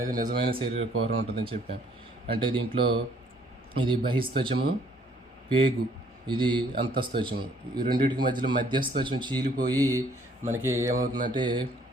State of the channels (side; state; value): both; normal; correlation 0.62